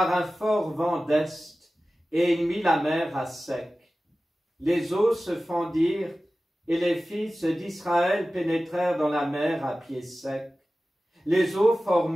un fort vent d'est, et il mit la mer à sec. Les eaux se fendirent, et les fils d'Israël pénétrèrent dans la mer à pied sec, les eaux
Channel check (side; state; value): both; normal; correlation 0.96